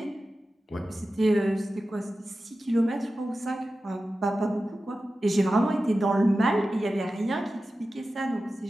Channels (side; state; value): both; normal; correlation 0.94